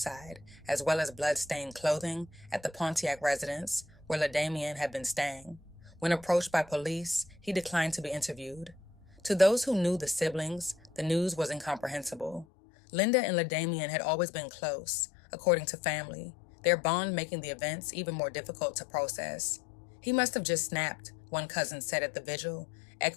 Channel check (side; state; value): right; drops out; at 12.5 s